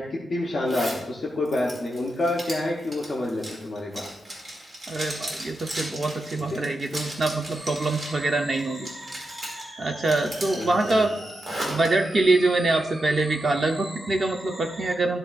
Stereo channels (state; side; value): normal; both; correlation 0.87